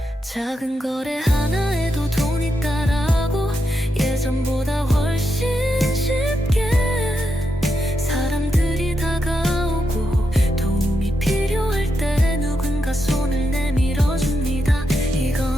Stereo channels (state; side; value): normal; both; correlation 0.84